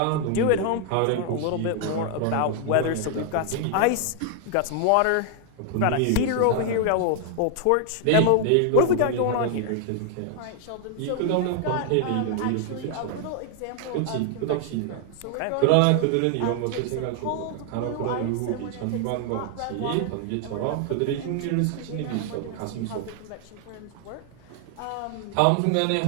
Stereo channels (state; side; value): different; both; correlation 0.00